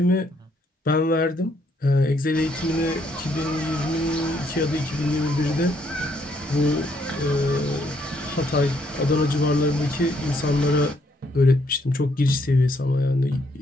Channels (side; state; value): both; normal; correlation 0.71